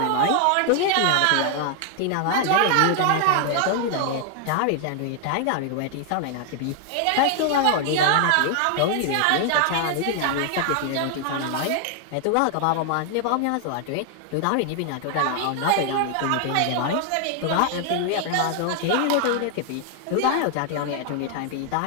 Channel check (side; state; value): both; different; correlation 0.00